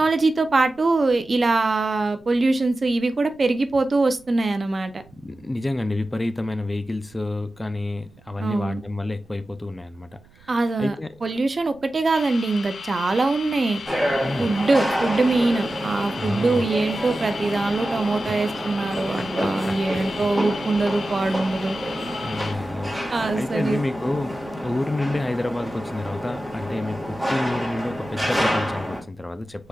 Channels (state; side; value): noise; right; rumble, 28 dB below the sound